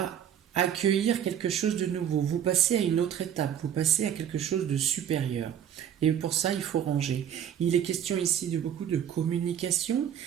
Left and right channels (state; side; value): quieter; left; 9.5 dB